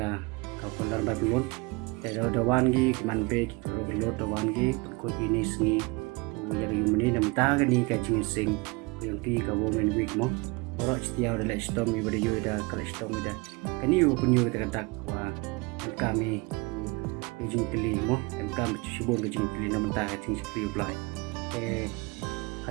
kau ladrymbai belum. Tapi dawan gi man be belum dawan gi Pynkhuid ini sengi. Yang ini nam ta kani kaji sing yang ki ka woman week mo. Wara setiap ada storm ibadah yo ada kalau storm ada. Kani yo penyu kita wa kami Jong pilih mo, kami shibun Jong pilih nama tak Jong pilih Blei.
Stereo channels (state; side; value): quieter; left; 26.8 dB